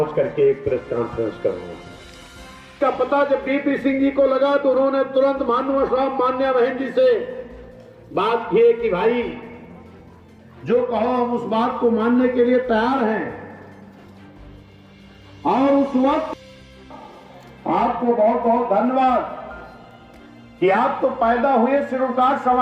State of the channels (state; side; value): identical; both; correlation 1.00